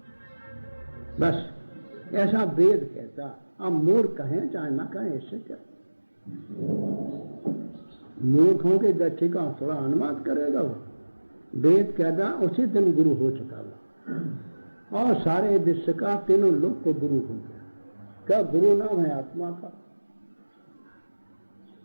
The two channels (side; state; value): both; inverted; correlation -1.00